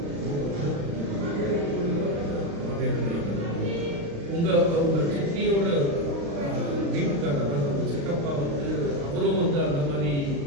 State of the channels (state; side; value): late; left; 35 ms